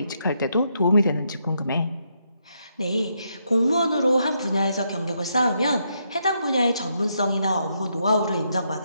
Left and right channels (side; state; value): both; inverted; correlation -0.78